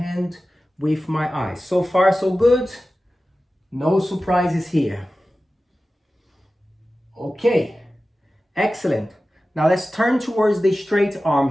with my eyes. So far, so good. No surprises here. Okay, excellent. Now let's turn towards the straight arm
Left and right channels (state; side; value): normal; both; correlation 0.95